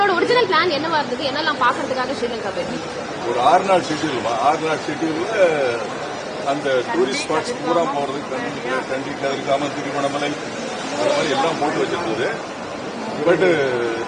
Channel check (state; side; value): identical; both; correlation 1.00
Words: ஒரிஜினல் பிளான் என்னவா இருந்தது? என்னெல்லாம் பாக்குறதுக்காக ஸ்ரீலங்கா போயிருந்தீங்க? ஒரு 6 நாள் ஷெட்யூல். 6 நாள் ஷெட்யூல்ல அந்த டூரிஸ்ட் ஸ்பாட்ஸ் பூரா போறதுக்கு கண்டி கதிர்காமம், திருவண்ணாமலை, அது மாதிரி எல்லாம் போட்டு வச்சிருந்தது. பட்